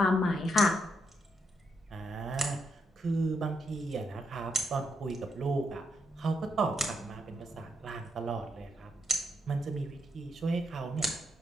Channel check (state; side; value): normal; both; correlation 0.78